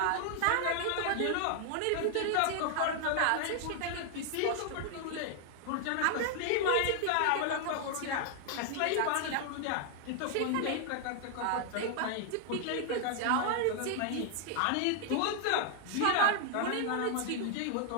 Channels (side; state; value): both; different; correlation 0.00